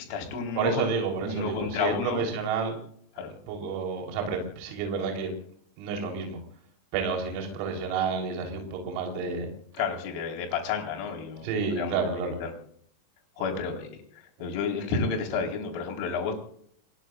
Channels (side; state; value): left; late; 20 ms